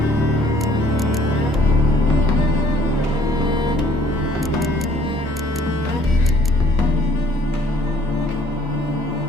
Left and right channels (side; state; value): both; normal; correlation 0.59